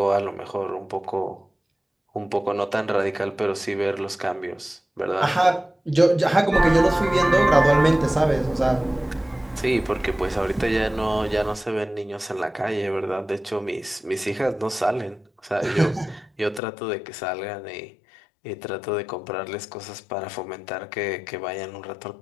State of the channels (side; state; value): right; drops out; at 16.6 s